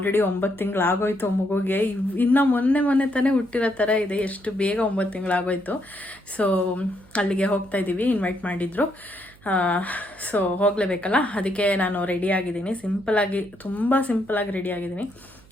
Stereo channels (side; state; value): right; noise; hum, 25 dB below the sound